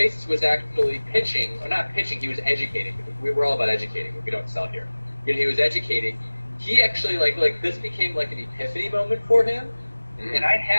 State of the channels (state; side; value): inverted; both; correlation -1.00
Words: was actually pitching, or not pitching, he was educating. We were all about educating, but we don't sell here. He was educating. He actually like this became like an epiphany moment for him. And I